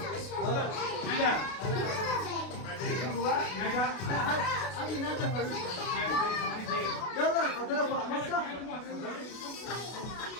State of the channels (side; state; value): right; late; 32 ms